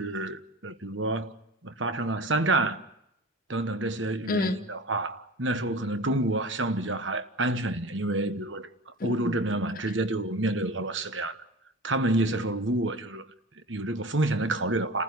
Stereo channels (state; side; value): normal; both; correlation 0.35